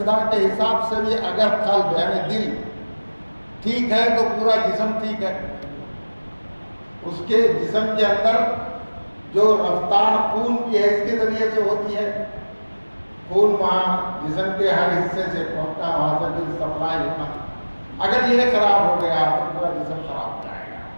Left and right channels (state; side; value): inverted; both; correlation -1.00